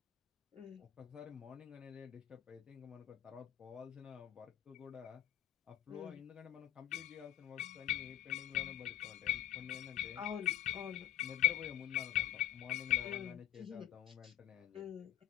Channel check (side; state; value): right; quieter; 12.3 dB